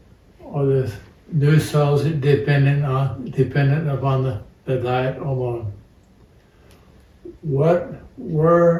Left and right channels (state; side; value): identical; both; correlation 1.00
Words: are the new cells dependent upon the diet alone?